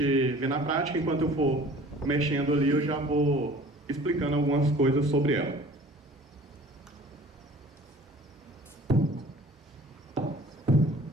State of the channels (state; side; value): normal; both; correlation 0.47